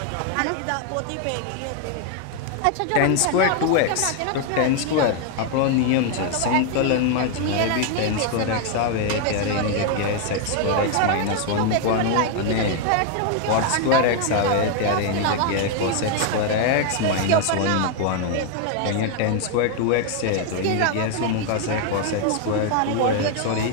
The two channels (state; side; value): different; both; correlation 0.01